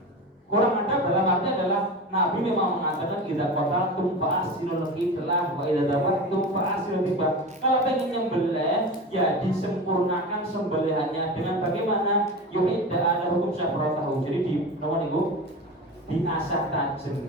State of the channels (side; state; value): both; normal; correlation 0.28